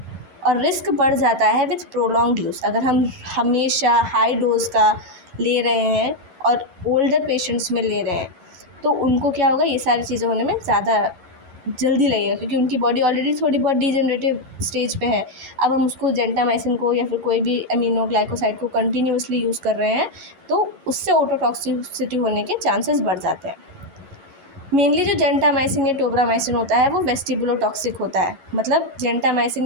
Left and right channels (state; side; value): late; left; 11 ms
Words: और रिस्क बढ़ जाता है विथ प्रोलॉन्ग्ड यूज़। अगर हम हमेशा हाई डोज का ले रहे हैं और ओल्डर पेशेंट्स में ले रहे हैं तो उनको क्या होगा, ये सारी चीज़ें होने में ज़्यादा जल्दी लगेगा, क्योंकि उनकी बॉडी ऑलरेडी थोड़ी बहुत डिजेनरेटिव स्टेज पे है। अब हम उसको जेंटामाइसिन को या फिर कोई भी अमीनोग्लाइकोसाइड को कंटिन्यूसली यूज़ कर रहे हैं तो उससे ऑटोटॉक्सिसिटी होने के चांसेस बढ़ जाते हैं। मेनली जो जेंटामाइसिन या टोब्रामाइसिन होता है वो वेस्टिबुलोटॉक्सिक होता है, मतलब जेंटामाइसिन